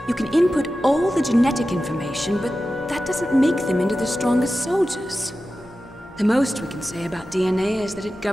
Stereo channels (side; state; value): both; normal; correlation 0.93